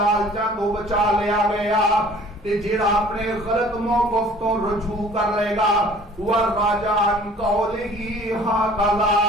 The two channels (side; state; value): both; normal; correlation 0.51